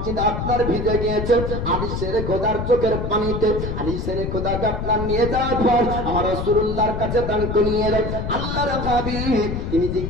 আপনার ভিজে গিয়েছে আলী সেরে খোদার চোখের পানিতে। আলী সেরে খোদাকে আপনার নিয়ে যাওয়ার পর আমার রাসূলুল্লাহর কাছে দান করিয়ে দেয়। আল্লাহর হাবিব তিনি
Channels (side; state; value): left; noise; rumble, 4 dB below the sound